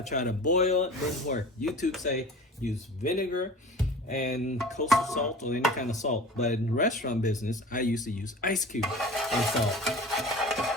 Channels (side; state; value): both; normal; correlation 0.39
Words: try to boil it, didn't work. YouTube say use vinegar and coastal salt or any kind of salt. But in the restaurant business, I used to use ice cube and salt.